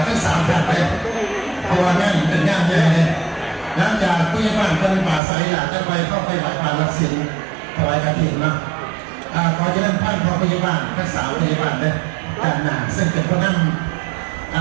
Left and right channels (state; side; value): drops out; left; at 5.2 s